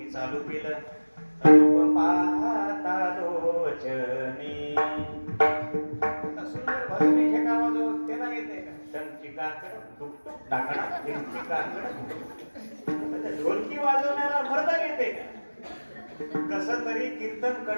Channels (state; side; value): inverted; both; correlation -1.00